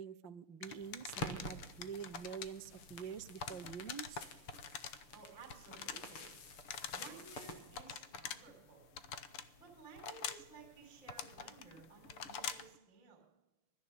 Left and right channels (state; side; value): late; right; 6.8 ms